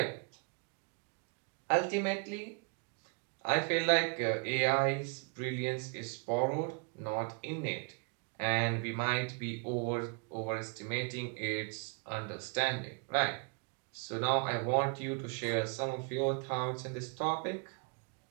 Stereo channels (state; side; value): quieter; left; 36.4 dB